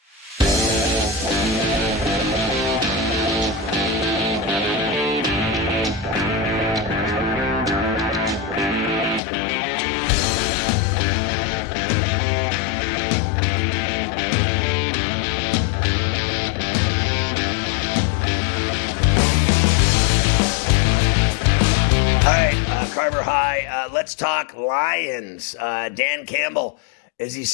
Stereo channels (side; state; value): right; drops out; at 9.2 s